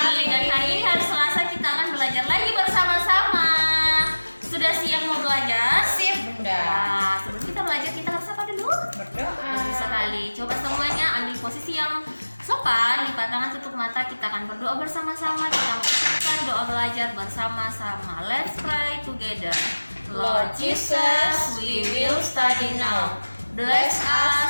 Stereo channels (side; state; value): both; inverted; correlation -1.00